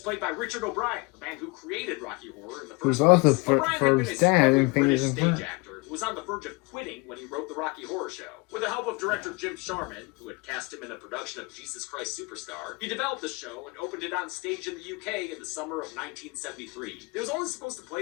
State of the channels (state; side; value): quieter; right; 27.4 dB